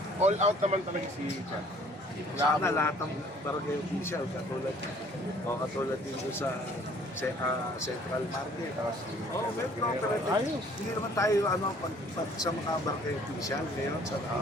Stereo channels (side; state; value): both; normal; correlation 0.56